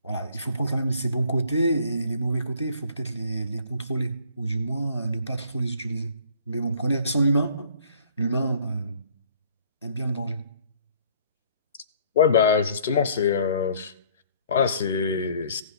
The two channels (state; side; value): inverted; both; correlation -0.57